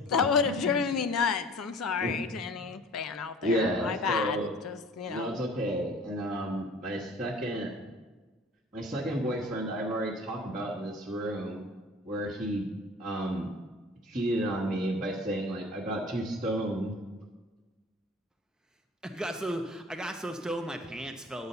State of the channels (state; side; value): normal; both; correlation 0.45